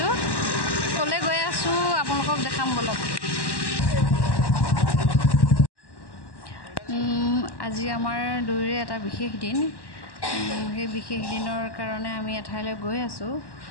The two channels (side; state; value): right; late; 1.1 ms